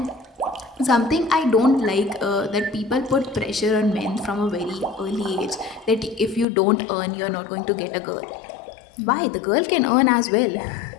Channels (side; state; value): right; drops out; at 6.5 s